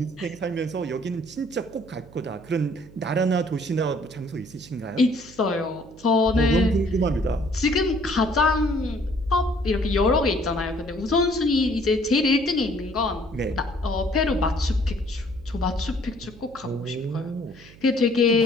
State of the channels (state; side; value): noise; right; hum, 22 dB below the sound